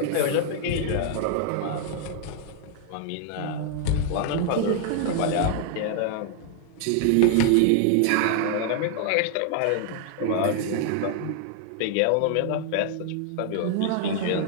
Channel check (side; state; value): both; different; correlation 0.00